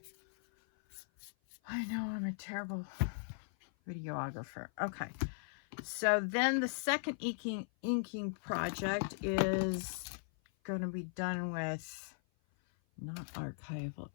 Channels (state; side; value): silent; right; 52 dB below the other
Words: I know I'm a terrible videographer. Okay, so then the second inking project is going to be done with not archival